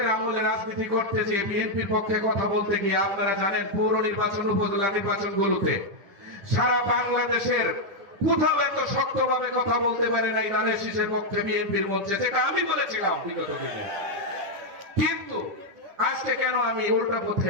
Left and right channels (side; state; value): left; late; 10 ms